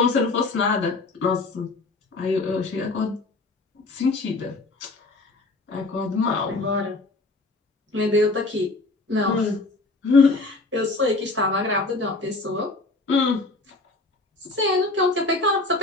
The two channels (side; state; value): right; quieter; 3.2 dB